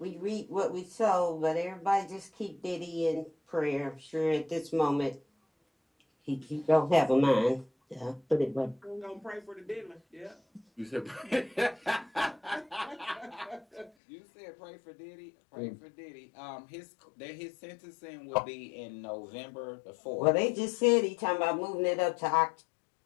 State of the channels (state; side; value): drops out; right; at 13.9 s